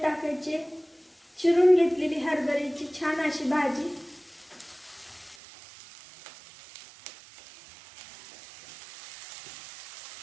टाकायचे चिरून घेतलेली हरभऱ्याची छान अशी भाजी।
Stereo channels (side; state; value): left; drops out; at 5.4 s